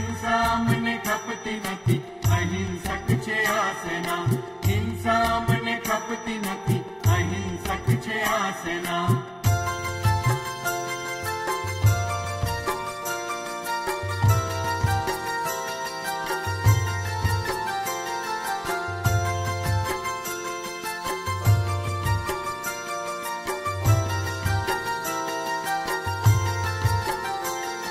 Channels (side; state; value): both; identical; correlation 1.00